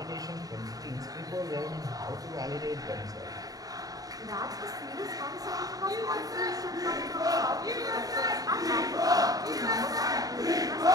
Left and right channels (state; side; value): late; left; 0.18 ms